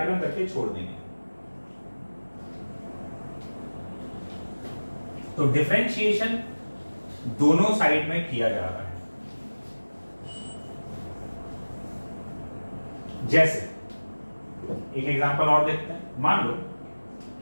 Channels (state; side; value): inverted; both; correlation -1.00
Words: करके छोड़ देंगे। तो डिफरेंशिएशन दोनों साइड में किया जा रहा है। जैसे एक एग्जांपल और देखते हैं। मान लो